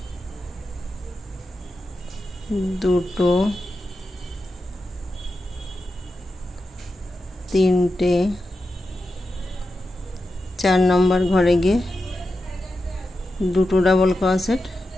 দুটো, তিনটে, 4 নম্বর ঘরে গিয়ে দুটো ডাবল ক্রোশেট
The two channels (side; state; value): both; normal; correlation 0.90